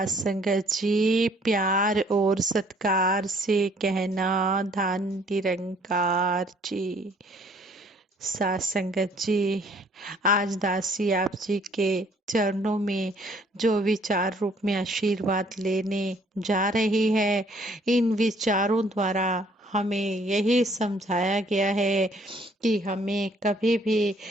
संगत जी, प्यार और सत्कार से कहना धन निरंकार जी। सात संगत जी, आज दासी आप जी के चरणों में जो विचार रूप में आशीर्वाद लेने जा रही है, इन विचारों द्वारा हमें यही समझाया गया है कि हमें कभी भी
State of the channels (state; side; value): normal; both; correlation 0.61